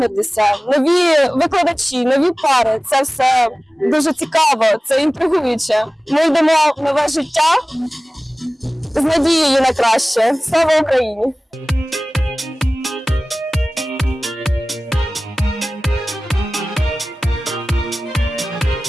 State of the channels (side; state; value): both; normal; correlation 0.98